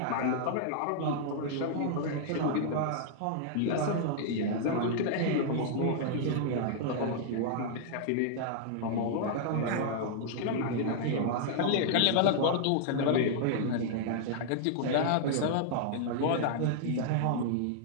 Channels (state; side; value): different; both; correlation -0.01